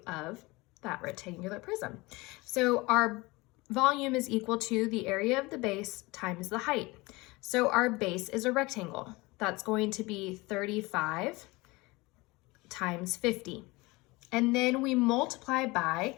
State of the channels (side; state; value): right; quieter; 23.0 dB